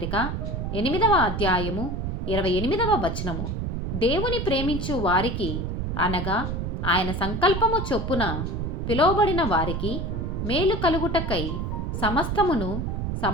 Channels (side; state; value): right; noise; rumble, 2 dB below the sound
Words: 8వ అధ్యాయము 28వ వచనము. దేవుని ప్రేమించు వారికి, అనగా ఆయన సంకల్పము చొప్పున పిలువబడిన వారికి మేలు కలుగుటకై సమస్తమును